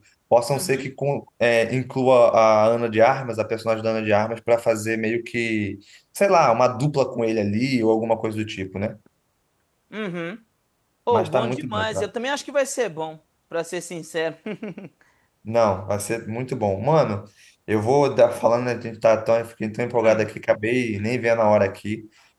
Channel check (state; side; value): identical; both; correlation 1.00